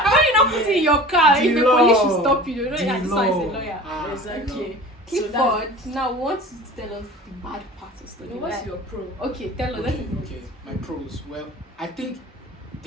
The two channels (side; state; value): both; normal; correlation 0.39